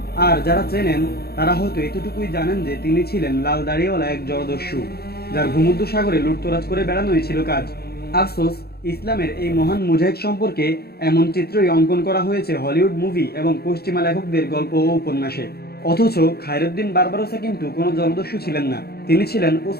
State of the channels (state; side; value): late; right; 0.46 ms